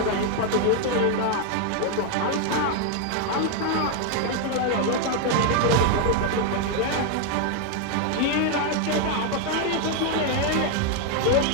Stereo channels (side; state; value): both; different; correlation 0.01